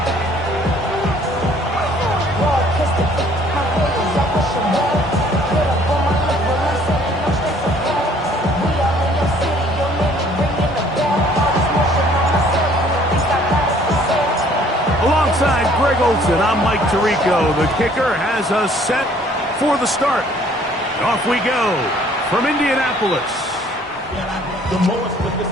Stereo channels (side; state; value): both; normal; correlation 0.58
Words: I'm Mike Tirico. The kicker has us set for the start. Off we go from Indianapolis.